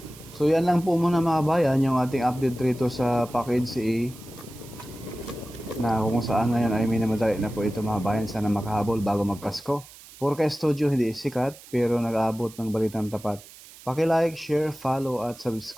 So yan lang po muna mga bayan, yung ating update rito sa package A na kung saan ngayon ay minamadali na po ito mga bayan, sana makahabol bago magpasko. Purka Studio hindi sikat pero nag-aabot ng balitang tapat. Paki-like, share, follow at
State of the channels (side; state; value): right; noise; hiss, 20 dB below the sound